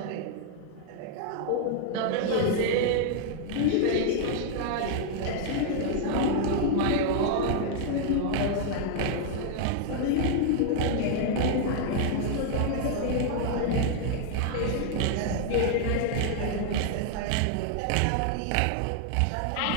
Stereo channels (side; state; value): both; different; correlation 0.00